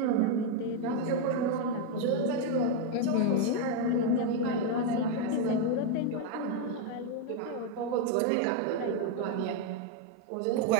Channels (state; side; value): different; both; correlation 0.01